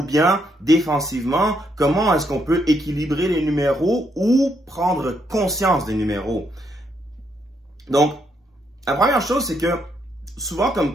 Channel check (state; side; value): normal; both; correlation 0.76